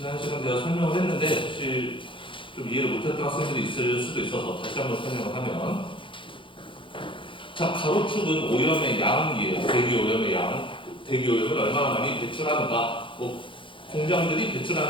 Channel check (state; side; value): late; right; 0.25 ms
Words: 시간에 제가 설명을 했는데 혹시 좀 이해를 못했던 학생들이 있을 수도 있어서 다시 한번 설명을 하면, 자, 가로축은 오염의 양이에요. 대기 오염의 양, 대기 오염을 얼마나 많이 배출하는가, 공장들이